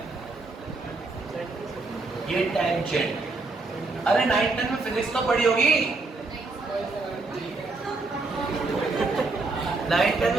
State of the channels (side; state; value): left; quieter; 3.5 dB